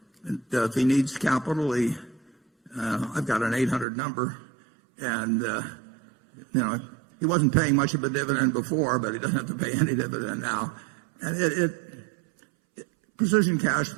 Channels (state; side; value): drops out; left; at 3.9 s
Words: If he needs capital, I've got an 800 number, and he wasn't paying much of a dividend before, but he doesn't have to pay any dividend now. And Precision Cash